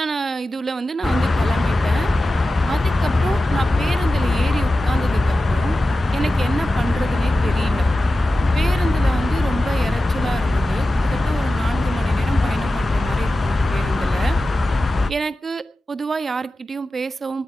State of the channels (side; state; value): both; normal; correlation 0.94